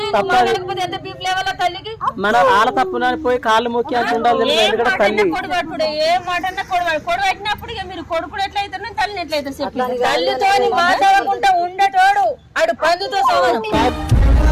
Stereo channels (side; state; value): both; identical; correlation 1.00